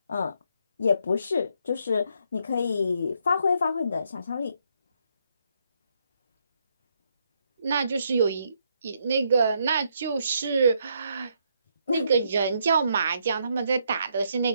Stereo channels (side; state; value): both; inverted; correlation -0.75